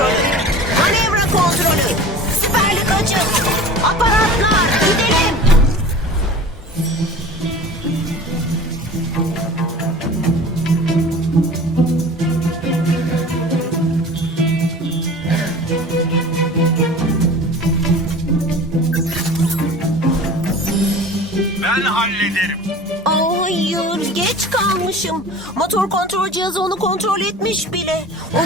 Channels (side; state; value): both; normal; correlation 0.40